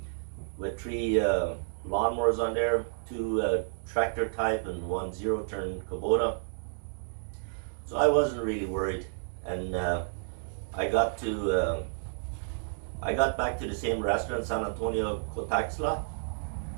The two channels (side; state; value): left; silent; digital silence